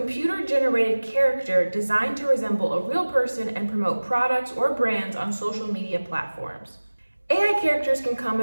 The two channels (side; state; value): both; inverted; correlation -1.00